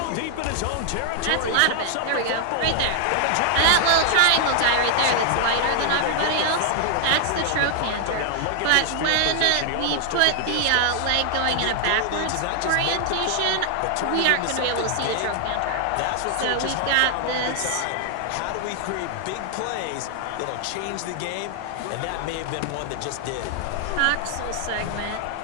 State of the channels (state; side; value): different; both; correlation 0.00